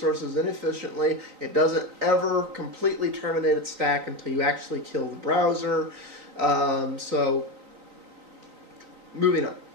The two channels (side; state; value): left; late; 3.9 ms